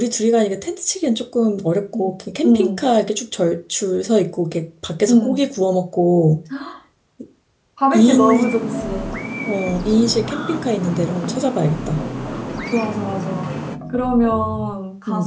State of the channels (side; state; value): both; identical; correlation 1.00